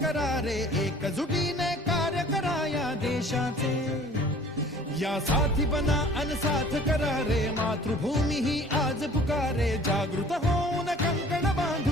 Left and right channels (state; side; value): normal; both; correlation 0.49